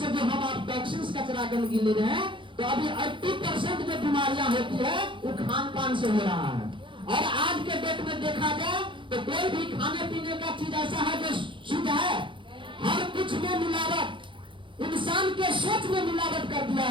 जो हम आप टॉक्सिन्स, कचरा, गंदगी ले रहे हैं, तो अभी 80% जो बीमारियां होती है वो खान पान से हो रहा है। और आज के डेट में देखा जाए तो कोई भी खाने पीने का चीज ऐसा है जो शुद्ध है? हर कुछ में मिलावट। इंसान के सोच में मिलावट कर दिया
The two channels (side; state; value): left; late; 0.24 ms